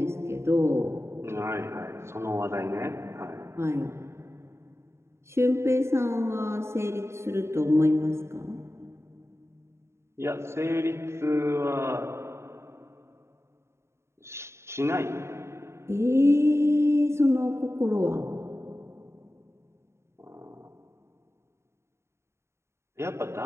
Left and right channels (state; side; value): late; left; 0.13 ms